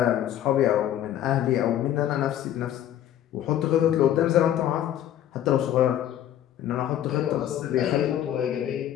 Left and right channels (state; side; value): quieter; right; 11.4 dB